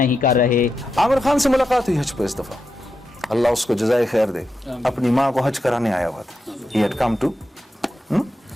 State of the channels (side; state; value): both; normal; correlation 0.87